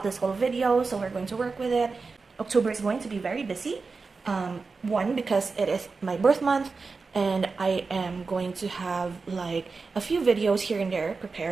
this whole video, so we're going to work with it. October is going to be very busy. One, because it is my birth month, and I am going to have like a few videos here and there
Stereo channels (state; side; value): quieter; left; 4.4 dB